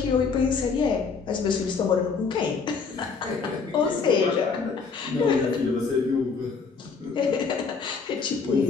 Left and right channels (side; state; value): right; quieter; 5.1 dB